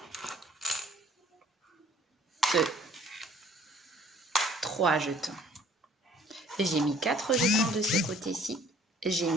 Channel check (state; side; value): normal; both; correlation 0.56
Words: 2, 3 jetons. J'ai mis 4 jetons de ce côté-ci. J'ai